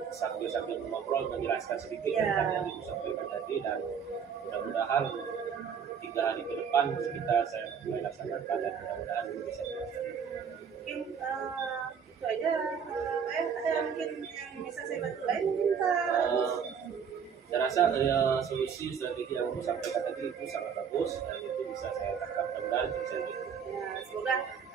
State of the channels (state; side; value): quieter; left; 7.1 dB